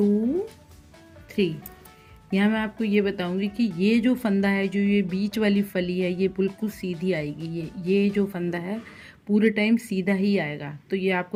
3। यहाँ मैं आपको ये बताऊंगी कि ये जो फंदा है, जो ये बीच वाली फली है, ये बिल्कुल सीधी आएगी। ये जो फंदा है पूरे टाइम सीधा ही आएगा। तो ये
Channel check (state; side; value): identical; both; correlation 1.00